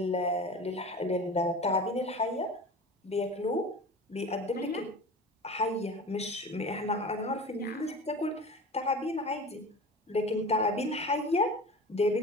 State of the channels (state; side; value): normal; both; correlation 0.35